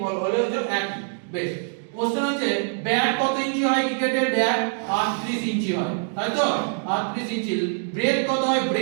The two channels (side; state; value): left; silent; 61 dB below the other